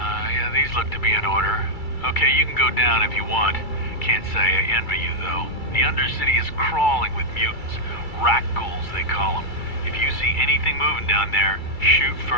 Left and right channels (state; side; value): late; right; 2.3 ms